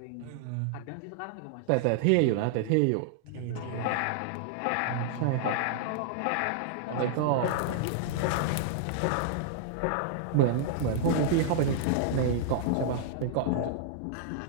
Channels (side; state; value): both; different; correlation -0.01